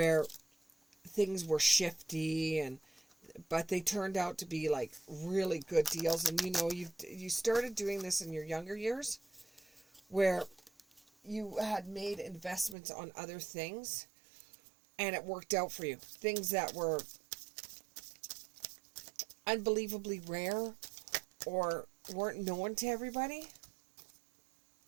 things were shifty, but they turned out to be like really good deals. And, you started doing this in your younger years where you had made investments on other things and it worked out for you. Things that were unbelievably rare or weren't known to everybody.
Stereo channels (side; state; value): left; drops out; at 12.8 s